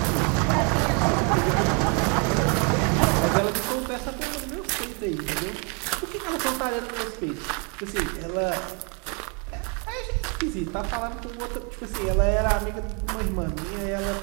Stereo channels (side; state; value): left; quieter; 35.7 dB